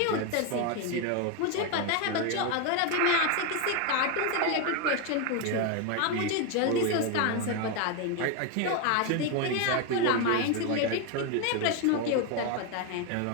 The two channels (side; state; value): both; different; correlation 0.01